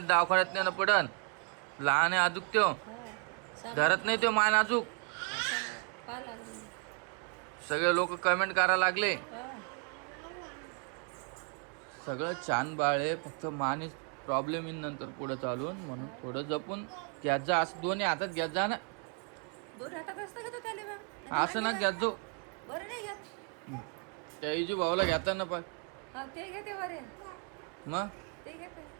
नाही ना पडन. लहान आहे अजूक त्यो, धरत नाही त्यो मान अजूक. सगळे लोक कमेंट करायला लागले. सगळं छान बाळ आहे, फक्त मानेच प्रॉब्लेम येईल नंतर पुढे चालून. म्हणून थोडं जपून घ्यात जा. असं दोन्ही हातात घ्यात जा ना. असं ना घ्यात जो. त्या इजू भाऊला घेता ना पण मग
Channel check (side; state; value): left; quieter; 39.1 dB